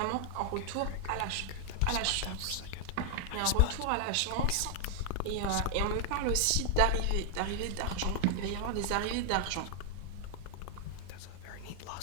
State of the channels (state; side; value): different; both; correlation 0.00